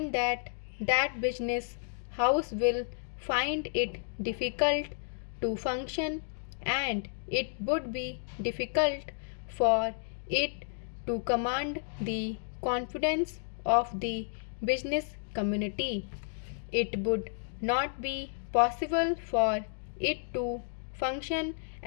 that that business house will find it difficult to function, and it would be difficult for it to command the confidence of the business community. It would not be possible for it to function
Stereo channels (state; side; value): silent; right; digital silence